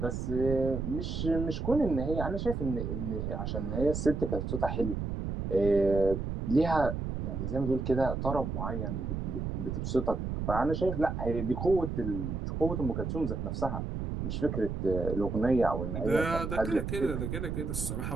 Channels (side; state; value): right; noise; rumble, 3 dB below the sound